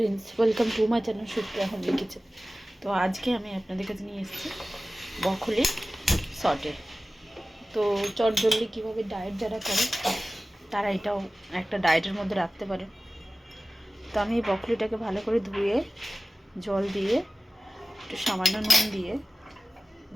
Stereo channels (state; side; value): normal; both; correlation 0.97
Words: welcome to my channel Supriya homely kitchen. তো আজকে আমি আপনাদের কাছে নিয়ে এসেছি ব্রকলি সটে। তো চটজলদি কীভাবে ডায়েট যারা করে তারা এটাও একটা ডায়েটের মধ্যে রাখতে পারে। তো আমি এই ব্রকলিটাকে ভালো করে ধুয়ে জল দিয়ে একটু সামান্য নুন দিয়ে